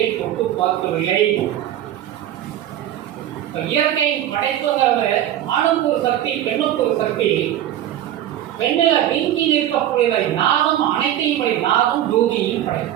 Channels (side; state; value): left; quieter; 12.0 dB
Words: தொட்டு பார்க்கவில்லை. இயற்கையின் படைப்புங்கிறது ஆணுக்கு ஒரு சக்தி, பெண்ணுக்கு ஒரு சக்தி. பெண்ணில நீங்கி நிற்கக்கூடியதை நாதம் அனைத்தையும் படை. நாதம் ஜோதியையும்